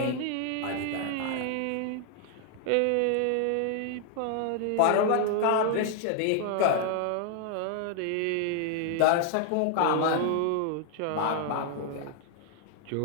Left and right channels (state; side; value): different; both; correlation 0.00